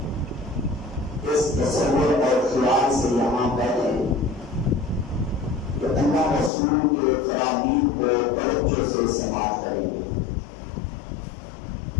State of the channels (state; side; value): drops out; right; at 6.5 s